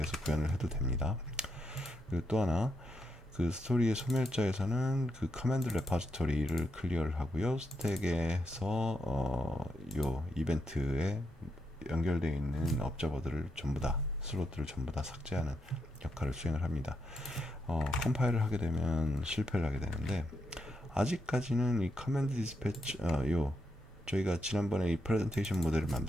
구현을 해도 됩니다. 그리고 또 하나 그 스토리의 소멸자에서는 그 커맨드 레퍼지토리를 클리어를 하고요. 스택에서 요 이벤트에 연결되어 있는 업저버들을 전부 다 슬롯들을 전부 다 삭제하는 역할을 수행을 합니다. 컴파일을 하게 되면 실패를 하게 되는데 아직까지는 이 커맨드 디스패치 저희가 지난번에 이 프레젠테이션 모델을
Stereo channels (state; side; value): normal; both; correlation 0.82